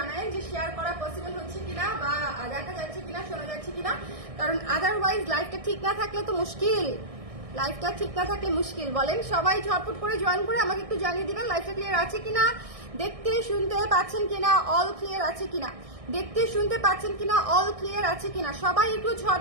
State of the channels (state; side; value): late; left; 1.6 ms